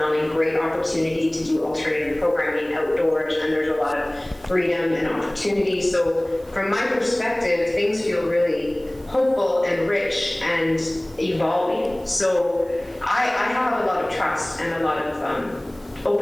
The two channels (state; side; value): noise; right; hiss, 28 dB below the sound